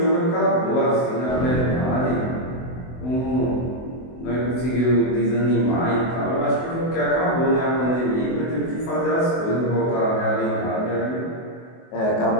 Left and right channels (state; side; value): late; right; 24 ms